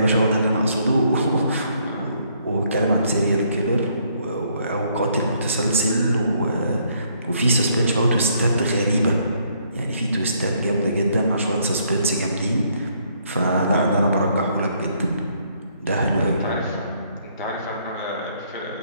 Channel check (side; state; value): both; inverted; correlation -0.68